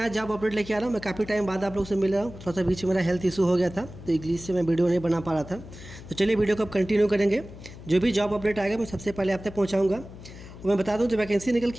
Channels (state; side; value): noise; left; hum, 15 dB below the sound